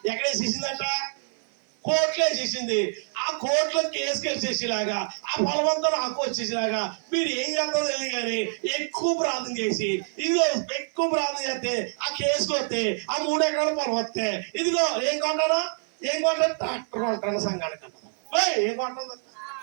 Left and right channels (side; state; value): left; silent; 57 dB below the other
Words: ఎక్కడేసేసిందంట? కోర్టులో వేసేసింది. ఆ కోర్టులో కేసు వేసేసేలాగా ఆ పొలమంతా నాకు వచ్చేసేలాగా మీరు ఏం చేస్తారో తెలియదు కానీ ఎక్కువ ప్రార్థన చేసి ఇదిగో ఎక్కువ ప్రార్థన చేస్తే ఆ కేసుకు వస్తే ఆ 3 ఎకరాల పొలం వస్తే ఇదిగో ఏం కొంటాను ట్రాక్టర్ కొంటాను. సంఘానికి ఏం కొంటాను?